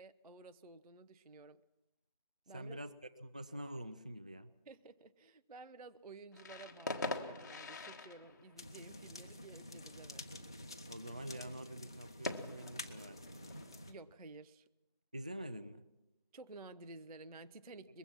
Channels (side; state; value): both; inverted; correlation -0.47